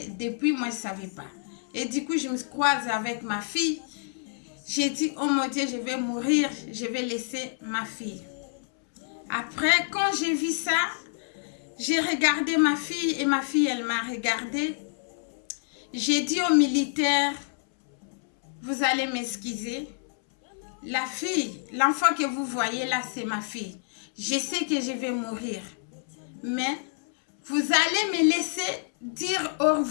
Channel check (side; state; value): right; silent; 60 dB below the other